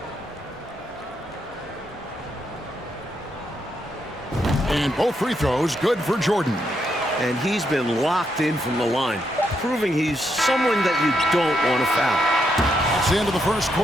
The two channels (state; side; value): normal; both; correlation 0.79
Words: And both free throws good for Jordan. And he's been locked in from the line, proving he's someone that you don't want to foul. That's the end of the first